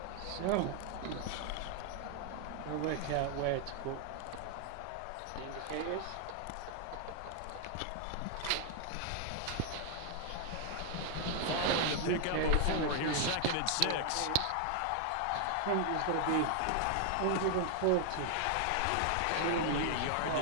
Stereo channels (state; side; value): different; both; correlation 0.00